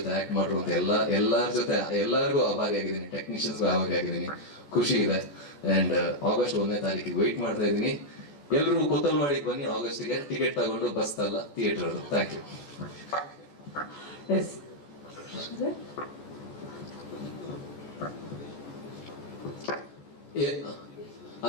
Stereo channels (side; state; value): right; late; 14 ms